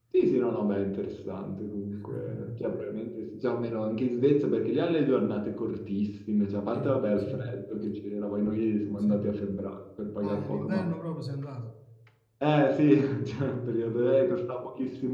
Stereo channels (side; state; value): both; identical; correlation 1.00